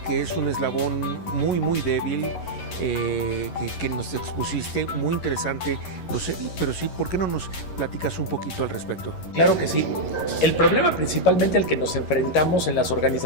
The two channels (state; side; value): late; right; 11 ms